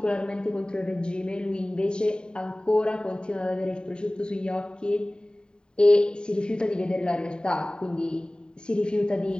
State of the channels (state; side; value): late; right; 0.048 ms